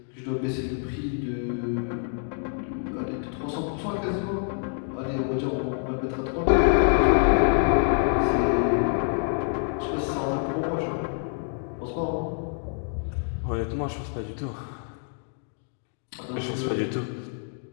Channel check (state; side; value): silent; right; 60 dB below the other